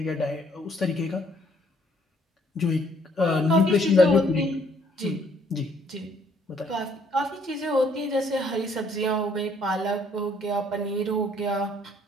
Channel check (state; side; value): normal; both; correlation 0.65